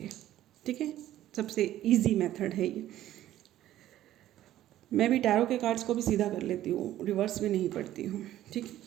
ठीक है, सबसे इजी मेथड है ये। मैं भी टैरो के कार्ड्स को भी सीधा कर लेती हूँ, रिवर्स में नहीं पढ़ती हूँ। ठीक है,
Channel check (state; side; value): quieter; left; 13.3 dB